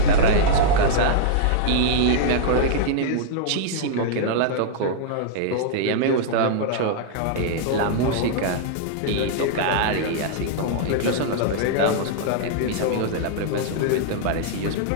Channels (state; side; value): different; both; correlation -0.01